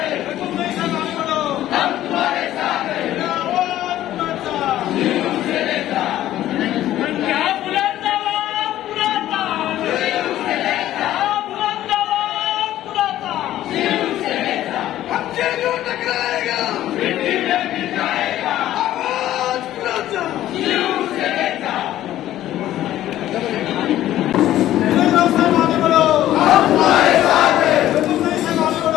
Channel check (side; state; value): right; quieter; 13.4 dB